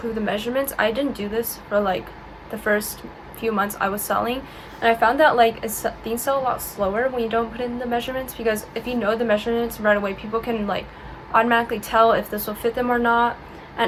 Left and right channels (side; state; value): both; identical; correlation 1.00